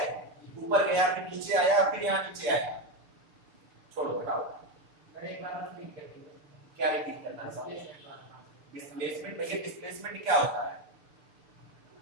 ऊपर गया फिर नीचे आया, फिर यहाँ नीचे आया। छोड़ो हटाओ। एक बार रिपीट कर दीजिए। क्या रिपीट करना है? डिस्प्लेसमेंट। भैया डिस्प्लेसमेंट क्या होता है?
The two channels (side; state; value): left; late; 6.7 ms